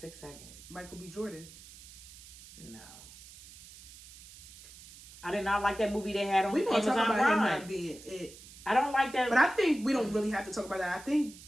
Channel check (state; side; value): noise; right; hiss, 18 dB below the sound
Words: seconds. Michael B. Jordan. No. I did not like that movie they had on We gonna Amazon talk about him Prime. not being it. I don't like that. But I think we don't really have to talk about that. I think